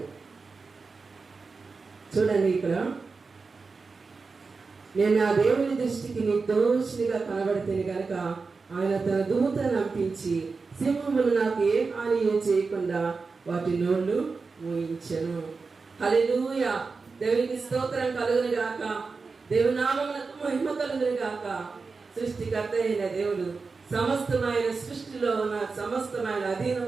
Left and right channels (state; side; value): quieter; left; 4.4 dB